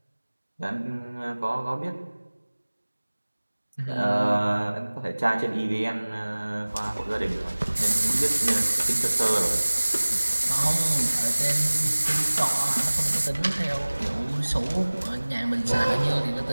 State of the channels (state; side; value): inverted; both; correlation -1.00